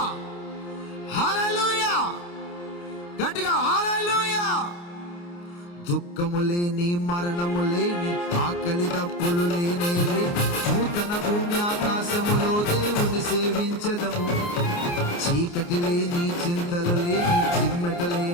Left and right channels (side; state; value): right; late; 29 ms